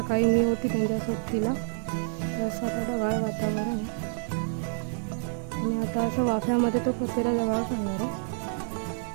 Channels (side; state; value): left; silent; digital silence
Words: सकाळी मी होती त्यांच्या सोबतीला. तर असं आता ढगाळ वातावरण आहे आणि आता असं वाफ्यामध्ये तो कचेरा जवळ करणार आहे.